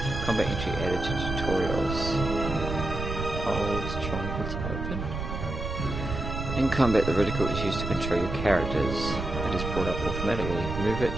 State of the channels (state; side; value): noise; right; rumble, 5 dB below the sound